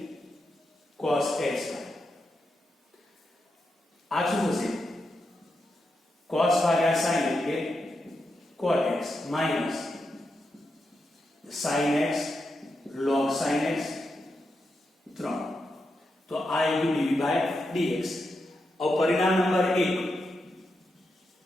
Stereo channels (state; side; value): normal; both; correlation 0.86